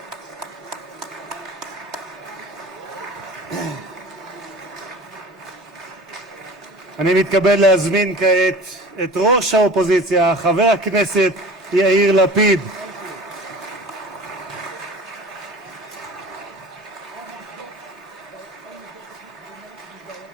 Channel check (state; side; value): normal; both; correlation 0.40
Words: אני מתכבד להזמין כעת את ראש האופוזיציה, חבר הכנסת יאיר לפיד.